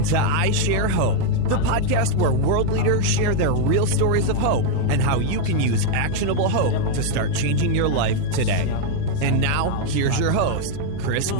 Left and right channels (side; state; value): both; different; correlation 0.00